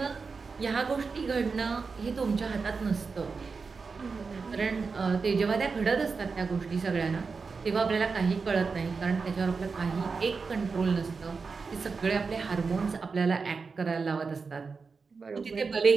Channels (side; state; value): left; quieter; 4.8 dB